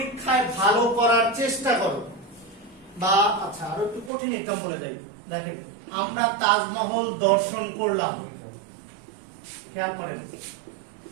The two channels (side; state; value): left; drops out; at 4.1 s